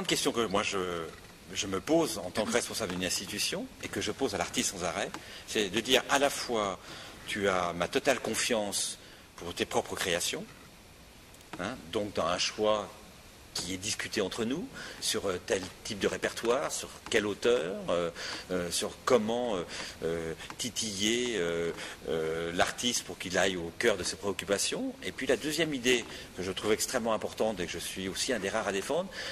question que moi je me pose en tant que responsable d'une institution et que je pose à l'artiste sans arrêt, c'est de dire à la fois tu as ma totale confiance pour tes propres créations, hein, donc dans un choix qui est discuté entre nous sur tel type de répertoire, sur quel auteur, sur comment titiller l'artiste pour qu'il aille au cœur de ses préoccupations. Et puis la deuxième idée que je trouve extrêmement importante et que je suis aussi un des rares à défendre,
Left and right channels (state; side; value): identical; both; correlation 1.00